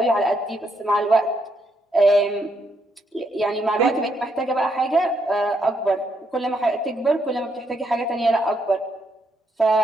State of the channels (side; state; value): both; normal; correlation 0.76